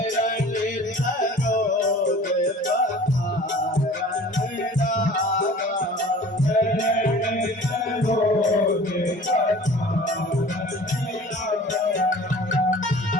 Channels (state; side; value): normal; both; correlation 0.45